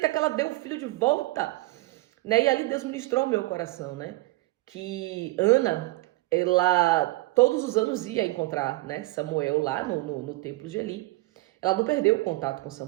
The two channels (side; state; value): left; quieter; 21.1 dB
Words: que ela dê o filho de volta? Né? E ali Deus ministrou ao meu coração, né? Que Ana, ela todos os anos ia encontrar, né, Samuel lá no templo de Eli. Ela não perdeu o contato com